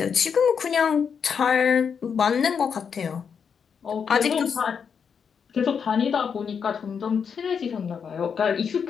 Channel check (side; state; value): right; quieter; 6.7 dB